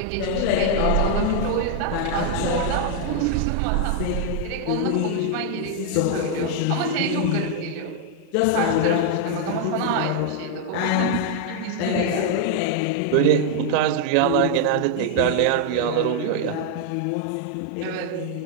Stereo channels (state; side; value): different; both; correlation 0.00